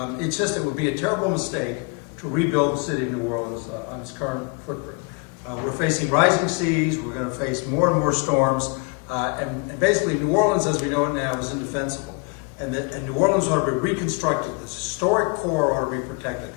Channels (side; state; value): right; quieter; 30.5 dB